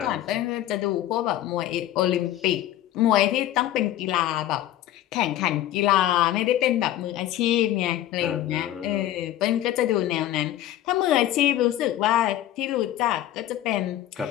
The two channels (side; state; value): right; quieter; 13.2 dB